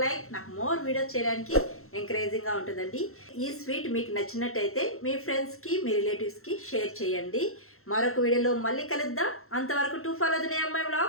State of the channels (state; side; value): late; right; 0.62 ms